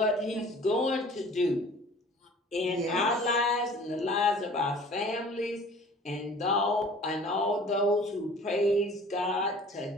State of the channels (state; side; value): normal; both; correlation 0.47